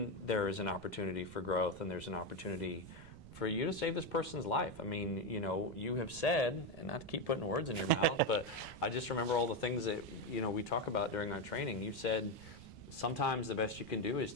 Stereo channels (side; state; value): right; noise; rumble, 18 dB below the sound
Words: there is an opportunity for growth and there's an opportunity for you to save this person's life. I mean, you have said, and not to keep putting words in your mouth, but I just remember all the things that, we talk about during our training. You said sometimes the best you can do is